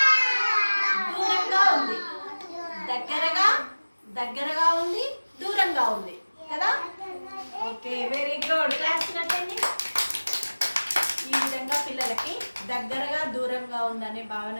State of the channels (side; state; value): both; inverted; correlation -1.00